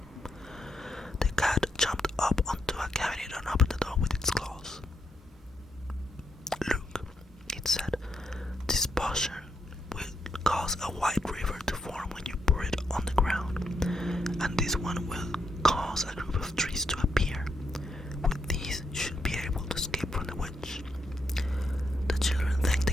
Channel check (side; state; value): both; normal; correlation 0.80